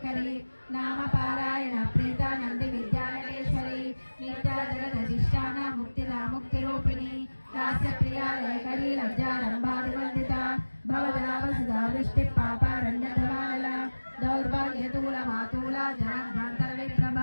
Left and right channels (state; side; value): inverted; both; correlation -1.00